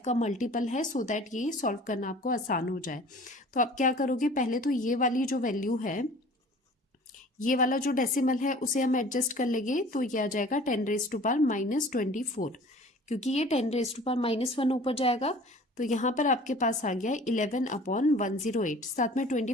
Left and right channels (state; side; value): normal; both; correlation 0.46